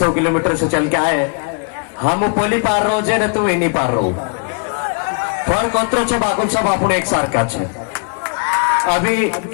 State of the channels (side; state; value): right; quieter; 37.7 dB